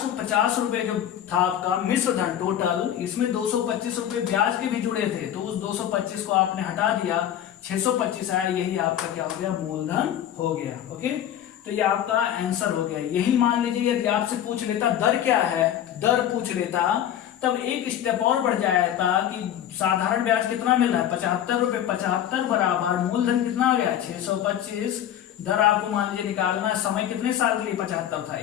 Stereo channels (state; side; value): quieter; right; 10.7 dB